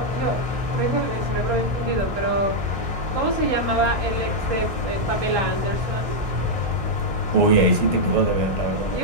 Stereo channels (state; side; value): late; left; 1.6 ms